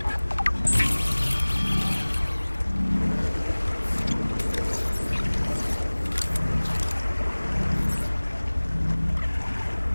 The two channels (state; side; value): inverted; both; correlation -1.00